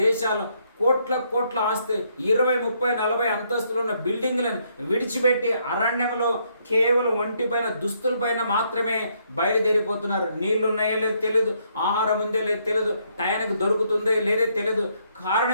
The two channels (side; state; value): both; inverted; correlation -0.72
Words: దేశాలు కోట్ల ఆస్తి, 20, 30, 40 అంతస్తులు ఉన్న బిల్డింగ్లను విడిచిపెట్టి అరణ్యంలో కేవలం ఒంటిపైన దుస్తులపైన మాత్రమే బయలుదేరిపోతున్నారు. నీళ్లు ఉన్నాయో లేదో తెలియదు, ఆహారం ఉందో లేదో తెలియదు, టయానికి దొరుకుతుందో లేదో తెలియదు.